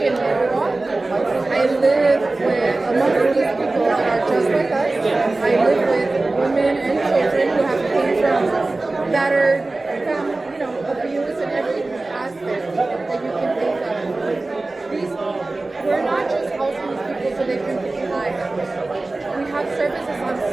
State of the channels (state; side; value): quieter; left; 3.1 dB